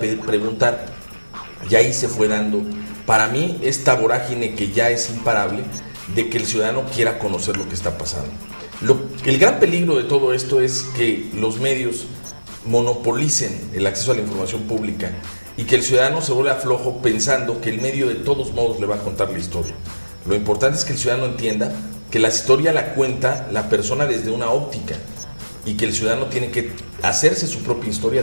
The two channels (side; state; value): both; inverted; correlation -1.00